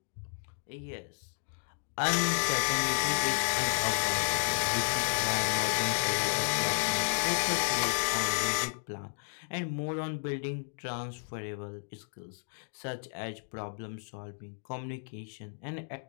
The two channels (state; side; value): silent; right; digital silence